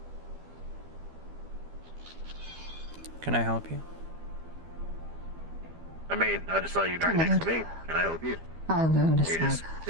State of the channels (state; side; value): late; left; 12 ms